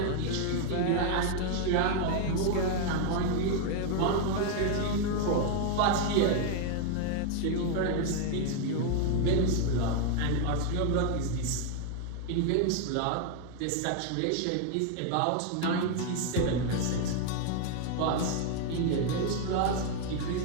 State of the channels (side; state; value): both; different; correlation 0.00